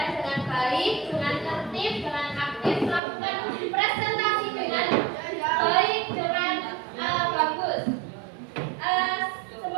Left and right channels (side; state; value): left; drops out; at 3.0 s